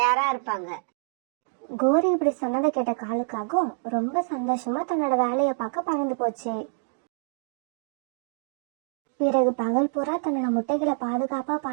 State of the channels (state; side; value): silent; left; 60 dB below the other